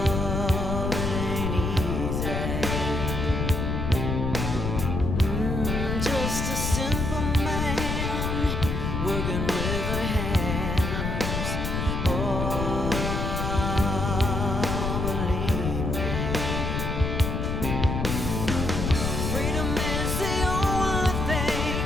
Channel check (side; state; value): left; noise; rumble, 1 dB below the sound